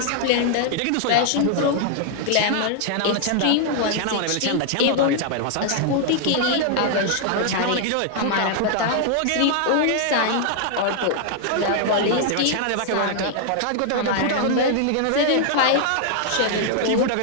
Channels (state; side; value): different; both; correlation 0.00